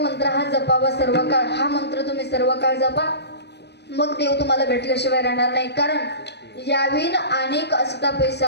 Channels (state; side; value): late; right; 0.49 ms